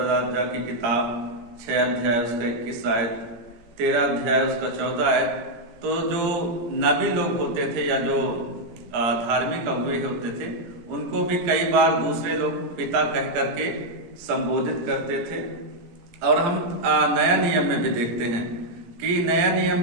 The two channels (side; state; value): left; late; 17 ms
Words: की किताब 6 अध्याय उसका 21 आयत, 13 अध्याय उसका 14 आयत, तो जो नबी लोग होते थे या जो धार्मिक अगुए होते थे उनको भी कई बार दूसरे लोग पिता कह करके संबोधित करते थे। और हम नया नियम में भी देखते हैं कि नया